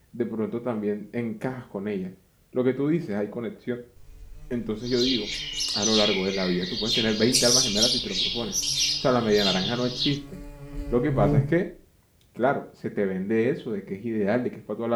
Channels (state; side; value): identical; both; correlation 1.00